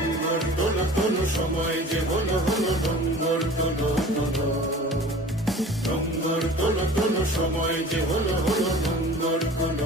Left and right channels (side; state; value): both; normal; correlation 0.42